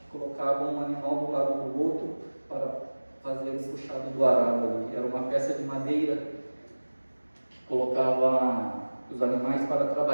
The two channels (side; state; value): both; inverted; correlation -1.00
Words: colocava um animal do lado do outro para fazer o puxado do arado ali. Era uma peça de madeira que colocava os animais para